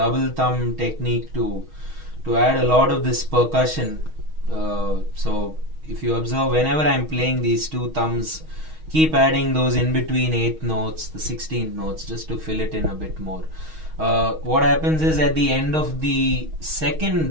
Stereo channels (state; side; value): late; left; 6.3 ms